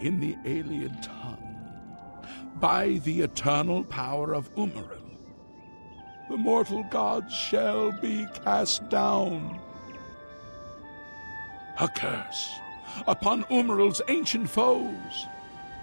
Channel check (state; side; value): inverted; both; correlation -1.00